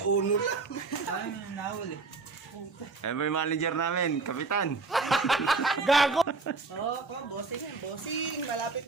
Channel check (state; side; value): quieter; left; 4.1 dB